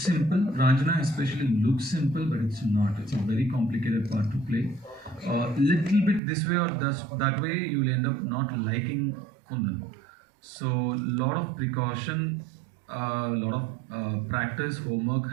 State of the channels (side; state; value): left; drops out; at 6.2 s